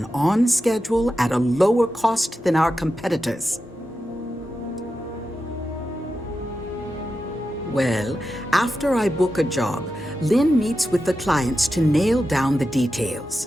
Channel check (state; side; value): normal; both; correlation 0.90